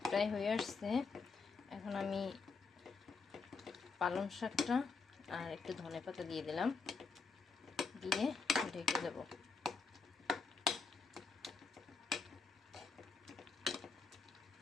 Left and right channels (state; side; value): quieter; right; 4.7 dB